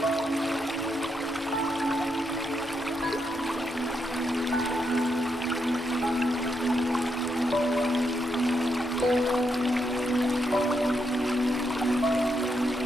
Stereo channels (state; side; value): normal; both; correlation 0.81